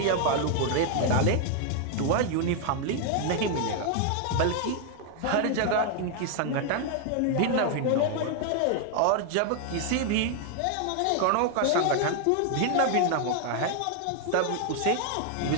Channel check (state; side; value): different; both; correlation 0.00